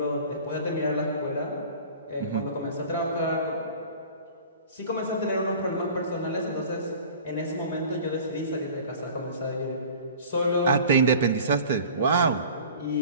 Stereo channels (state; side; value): inverted; both; correlation -0.43